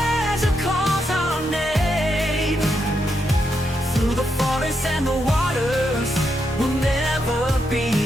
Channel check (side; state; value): both; normal; correlation 0.82